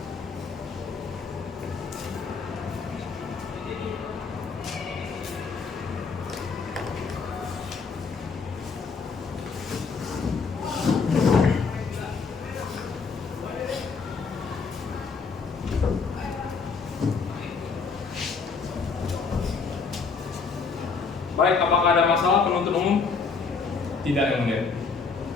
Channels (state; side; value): quieter; right; 4.9 dB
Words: Baik, apakah ada masalah penuntut umum? Tidak, yang mulia.